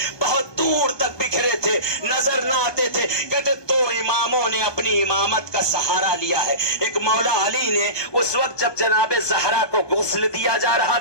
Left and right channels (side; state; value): right; late; 1.2 ms